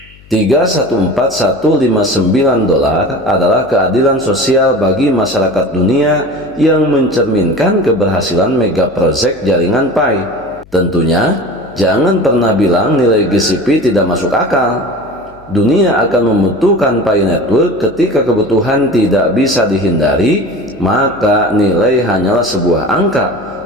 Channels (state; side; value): noise; left; hum, 25 dB below the sound